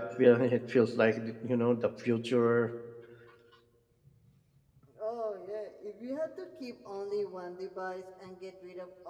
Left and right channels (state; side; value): identical; both; correlation 1.00